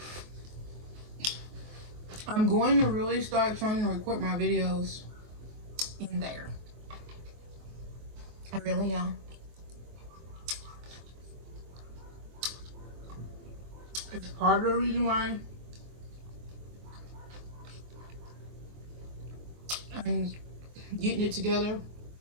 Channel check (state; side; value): late; left; 23 ms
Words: I'm going to really start trying to record my videos in there. I really am. It's part of the reason why I'm getting it together.